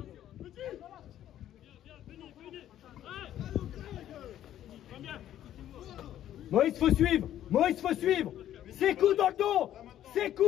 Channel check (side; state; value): right; quieter; 11.8 dB